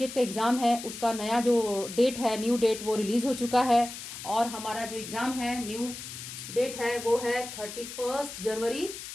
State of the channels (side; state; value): left; noise; hiss, 10 dB below the sound